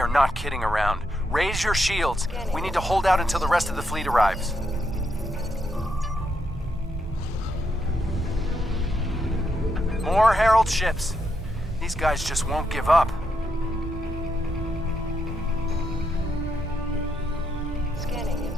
not kidding around. Raise your shields. We need to hold out until the rest of the fleet arrives. More Herald ships. These guys just won't give up. Scanning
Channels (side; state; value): both; normal; correlation 0.80